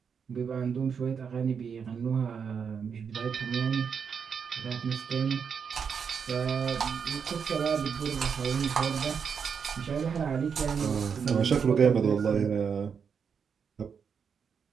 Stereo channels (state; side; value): quieter; left; 6.6 dB